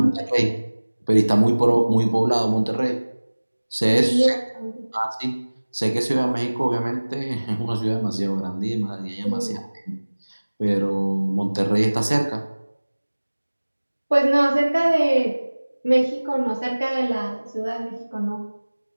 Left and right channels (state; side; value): inverted; both; correlation -1.00